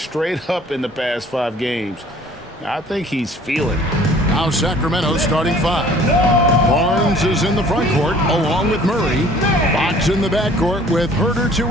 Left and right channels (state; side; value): normal; both; correlation 0.53